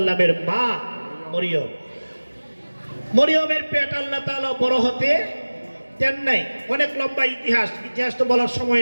মা মরিয়ম, মরিয়মের পেট আল্লাহ তাআলা বড় হতে দেন নাই। অনেক লম্বা ইতিহাস তো বলার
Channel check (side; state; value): both; inverted; correlation -1.00